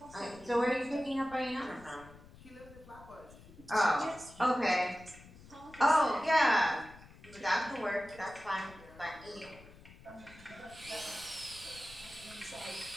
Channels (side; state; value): left; noise; rumble, 20 dB below the sound